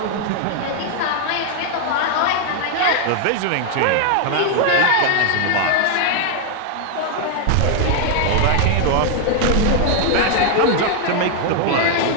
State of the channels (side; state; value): both; different; correlation 0.00